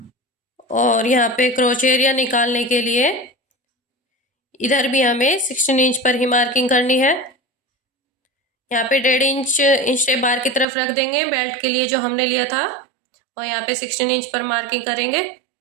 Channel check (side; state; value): left; drops out; at 10.7 s